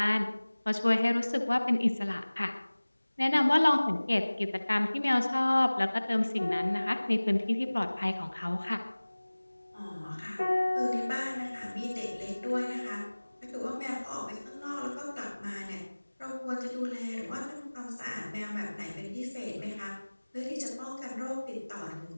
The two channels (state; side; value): inverted; both; correlation -1.00